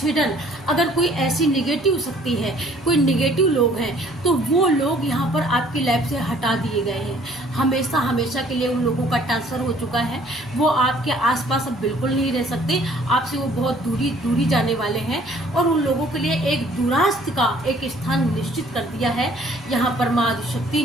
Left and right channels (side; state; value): both; normal; correlation 0.57